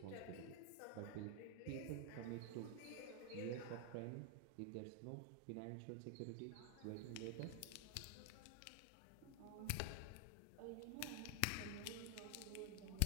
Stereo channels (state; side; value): different; both; correlation 0.00